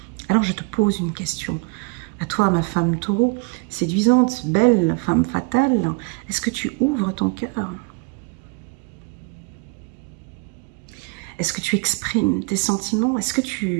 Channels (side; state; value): left; quieter; 32.5 dB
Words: Alors je te pose une question. À toi, ma femme taureau, séduisante, belle, femme fatale, est-ce que tu ouvres ton cœur? Est-ce que tu exprimes tes sentiments? Est-ce que